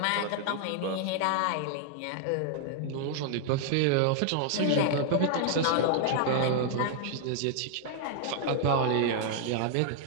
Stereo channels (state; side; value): different; both; correlation -0.01